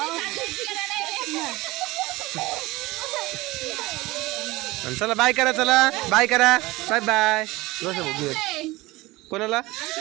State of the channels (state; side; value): quieter; left; 20.6 dB